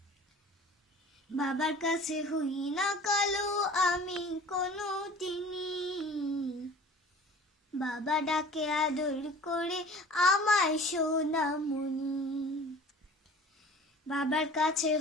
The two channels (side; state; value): both; normal; correlation 0.44